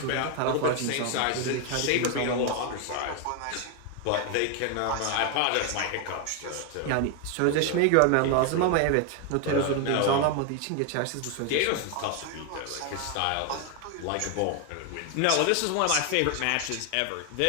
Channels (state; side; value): different; both; correlation 0.01